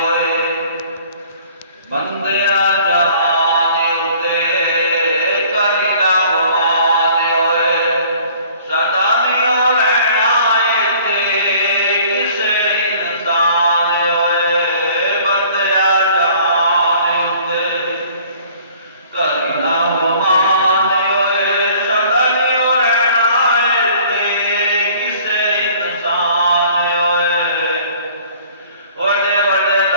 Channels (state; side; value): inverted; both; correlation -0.53